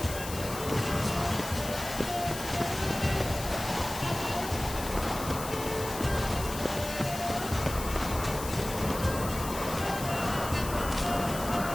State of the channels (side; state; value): left; noise; hiss, 9 dB below the sound